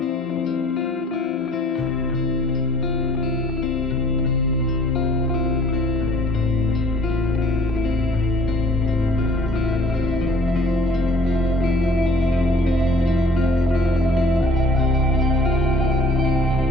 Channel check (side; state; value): both; normal; correlation 0.55